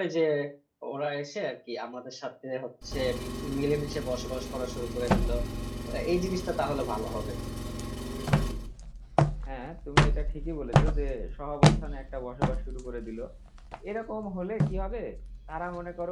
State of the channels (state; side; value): identical; both; correlation 1.00